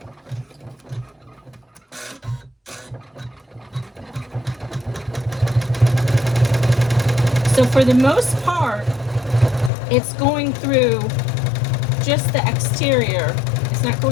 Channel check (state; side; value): drops out; right; at 9.7 s